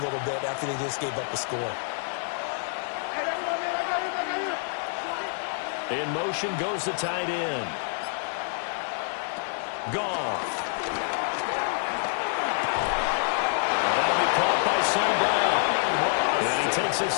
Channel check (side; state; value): right; silent; digital silence